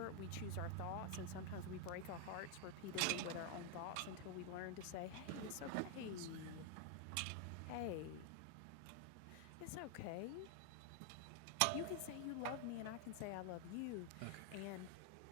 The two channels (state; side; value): different; both; correlation 0.00